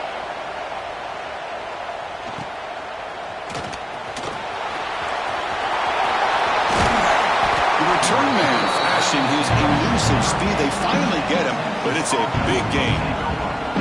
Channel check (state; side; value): identical; both; correlation 1.00